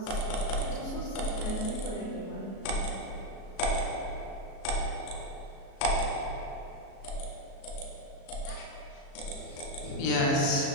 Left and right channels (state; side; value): late; right; 37 ms